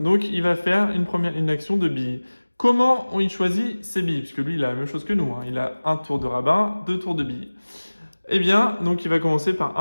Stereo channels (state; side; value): inverted; both; correlation -1.00